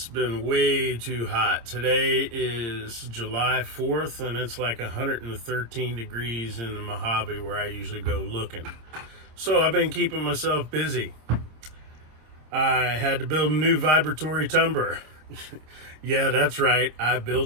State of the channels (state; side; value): late; left; 26 ms